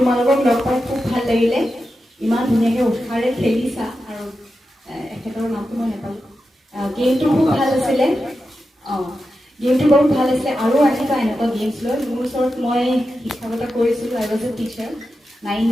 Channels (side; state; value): both; normal; correlation 0.90